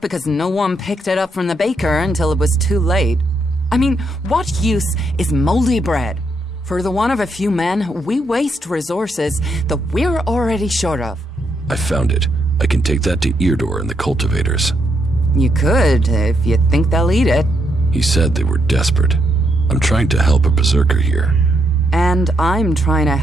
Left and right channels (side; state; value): both; normal; correlation 0.77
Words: because no one picked it up from the baker until it was too late. I mean, what use is moldy bread? For the want of a few men, we waste resources that we're already short of. I found it. I can take that to Eardor and the cultivators. You could, if you think they'll eat it. He said they were desperate. I'm trying to help a berserker here. And I'm trying to